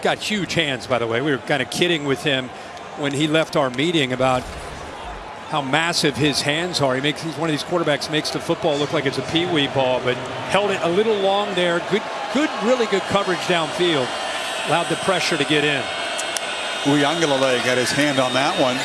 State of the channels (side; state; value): both; identical; correlation 1.00